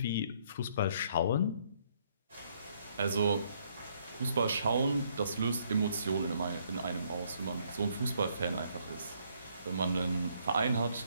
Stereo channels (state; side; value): inverted; both; correlation -0.69